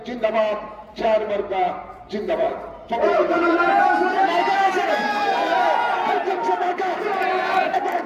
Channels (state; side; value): identical; both; correlation 1.00